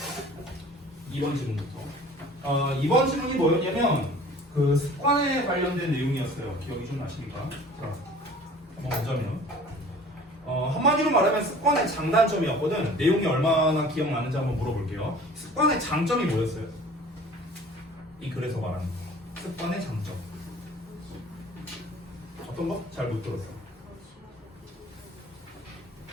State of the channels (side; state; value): both; normal; correlation 0.47